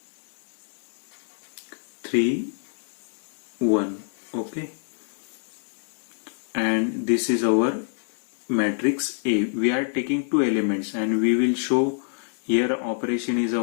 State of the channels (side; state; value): right; silent; digital silence